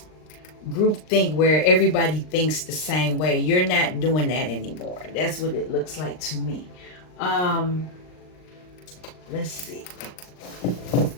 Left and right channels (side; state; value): right; late; 39 ms